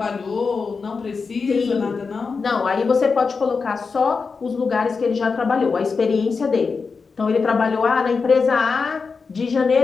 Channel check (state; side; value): quieter; right; 4.9 dB